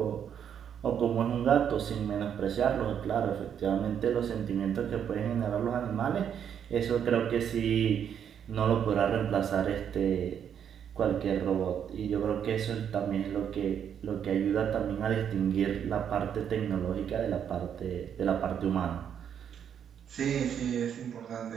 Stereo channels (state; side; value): quieter; left; 8.5 dB